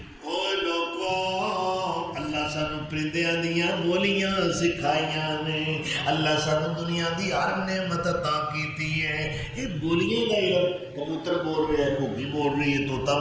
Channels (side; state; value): both; identical; correlation 1.00